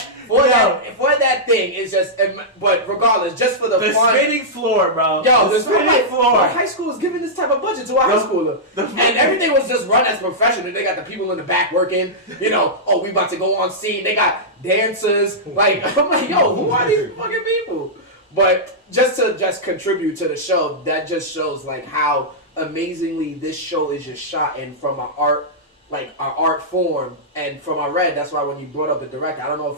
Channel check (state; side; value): normal; both; correlation -0.11